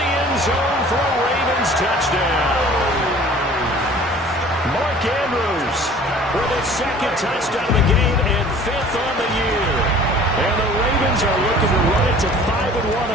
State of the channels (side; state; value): both; normal; correlation 0.48